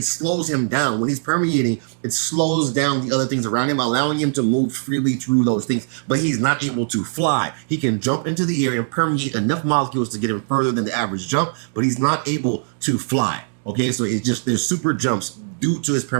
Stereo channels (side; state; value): left; silent; digital silence